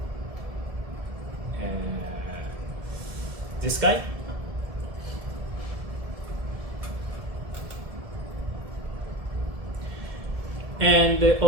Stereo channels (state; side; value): late; left; 1.7 ms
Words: This guy. And